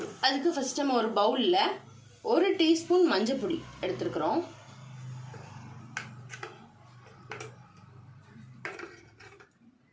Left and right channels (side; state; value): both; identical; correlation 1.00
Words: ஃபர்ஸ்ட் நம்ம ஒரு பவுலில் 1 டீஸ்பூன் மஞ்சள் பொடி எடுத்துருக்குறோம்.